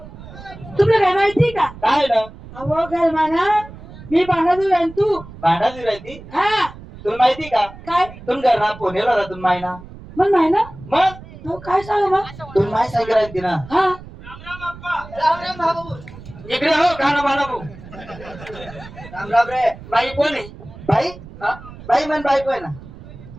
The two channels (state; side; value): noise; right; rumble, 16 dB below the sound